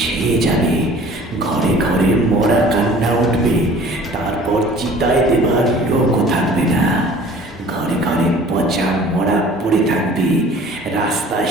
ছেয়ে যাবে, ঘরে ঘরে মরা কান্না উঠবে, তারপর চিতায় দেবার লোকও থাকবে না। ঘরে ঘরে পচা মরা পড়ে থাকবে, রাস্তায়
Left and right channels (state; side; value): normal; both; correlation 0.48